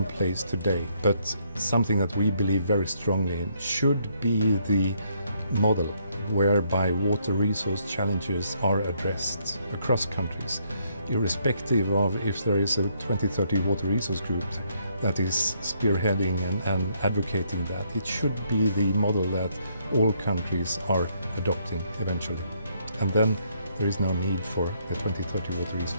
today, but something that we believe very strongly in, should be the model whereby water resource challenges are addressed across countries, irrespective of if there is a 2030 Water Resource Group that is spearheading and advocating that. It should be the model that all countries are adopting eventually. And then there is no need for the 2030 Water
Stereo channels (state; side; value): inverted; both; correlation -0.72